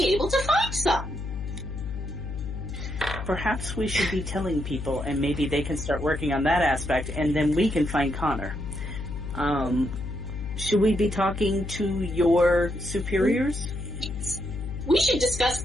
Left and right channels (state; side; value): noise; left; hum, 7 dB below the sound